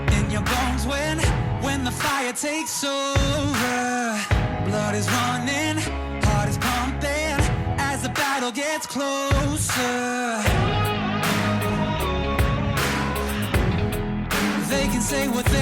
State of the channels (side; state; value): both; identical; correlation 1.00